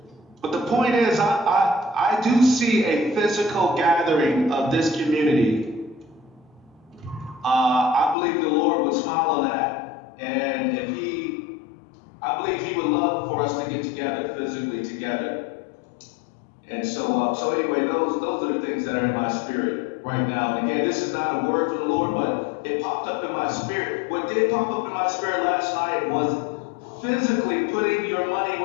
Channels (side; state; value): right; drops out; at 8.2 s